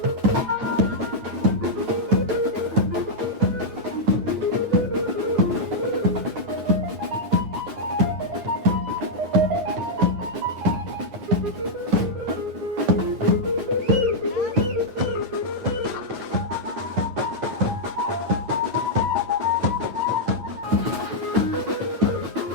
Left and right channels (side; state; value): left; late; 9.3 ms